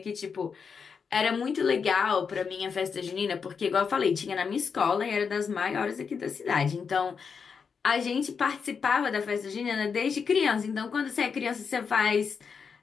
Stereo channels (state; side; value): quieter; right; 5.9 dB